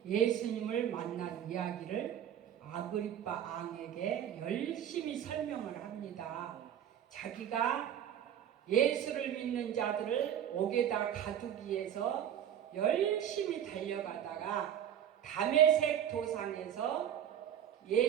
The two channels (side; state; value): left; quieter; 9.9 dB